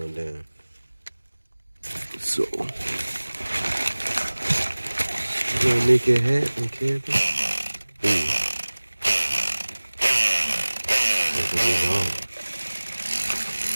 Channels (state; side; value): inverted; both; correlation -1.00